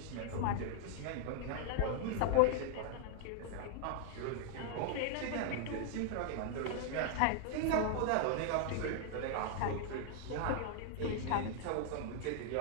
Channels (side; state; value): both; different; correlation 0.00